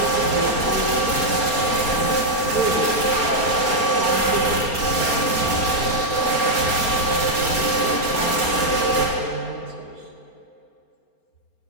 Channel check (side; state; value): right; late; 4.3 ms